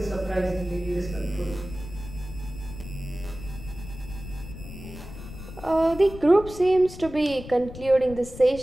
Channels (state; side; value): noise; left; rumble, 13 dB below the sound